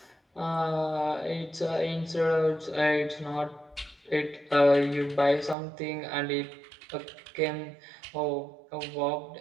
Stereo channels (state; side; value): drops out; left; at 5.6 s